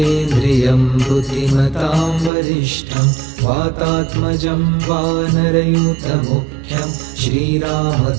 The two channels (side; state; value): left; drops out; at 2.3 s